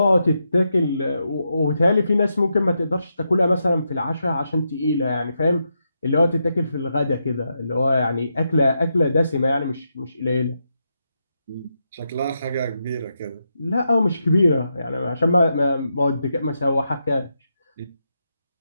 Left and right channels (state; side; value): inverted; both; correlation -0.84